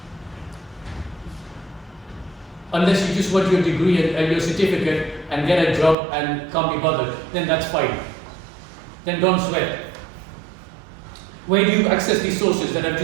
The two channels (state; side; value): drops out; left; at 6.0 s